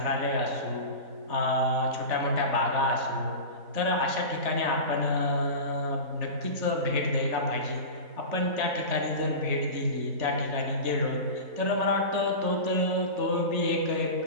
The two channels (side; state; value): left; late; 3.4 ms